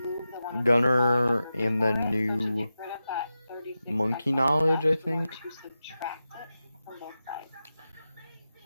gunner and the new monkey knowledge, I think.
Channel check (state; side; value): inverted; both; correlation -0.92